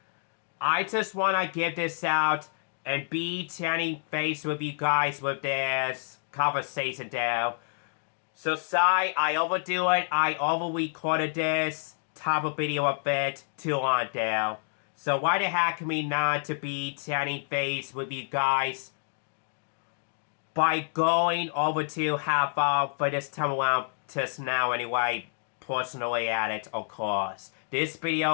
I just want to give this out and be chatting face with you guys with this conversation there. So sorry, I overdo it. I over-recorded this type of video a bit too long there. So why the heck me not to be chatting face with you guys by going over to half hour for this time around just now anyway, personally at it, of course. This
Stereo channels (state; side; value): silent; right; digital silence